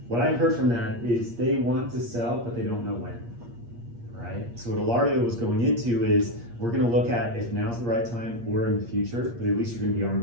What I heard from that is they want to sell, but they don't know when, right? So what Ilario was going into is, we're gonna look at if now's the right time or in the future, but at least you're gonna be armed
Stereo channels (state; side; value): late; left; 8.5 ms